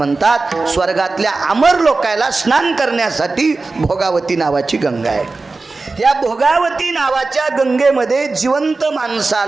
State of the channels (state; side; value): quieter; left; 3.7 dB